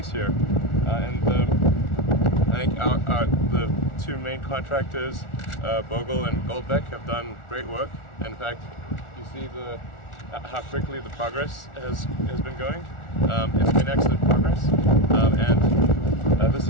here. I think the 2 main contractors, Bogle and Goldbeck, have done great work. In fact, you see how quickly the progress has been going. It's been excellent progress, and this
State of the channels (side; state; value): right; late; 1.4 ms